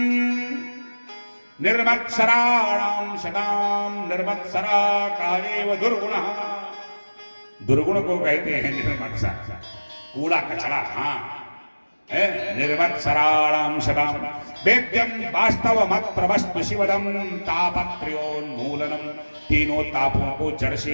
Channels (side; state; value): both; inverted; correlation -1.00